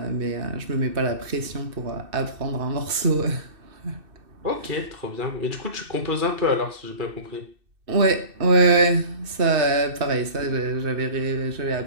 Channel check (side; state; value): left; late; 2.6 ms